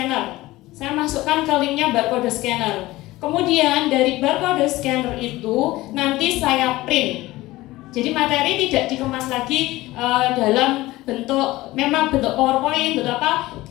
Saya masukkan ke linknya barcode scanner. Kemudian dari barcode scanner itu nanti saya print. Jadi materi tidak dikemas lagi dalam bentuk PowerPoint, bentuk apa,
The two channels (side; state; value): right; quieter; 18.3 dB